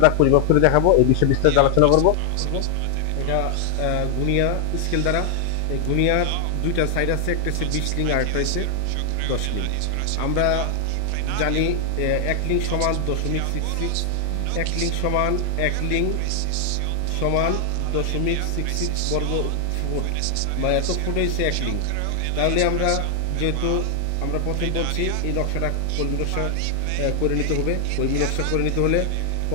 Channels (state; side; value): different; both; correlation 0.00